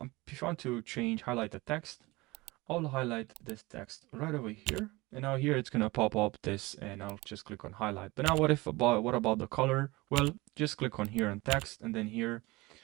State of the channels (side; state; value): left; quieter; 22.1 dB